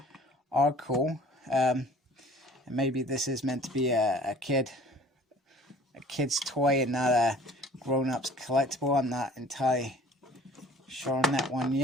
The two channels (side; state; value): both; normal; correlation 0.49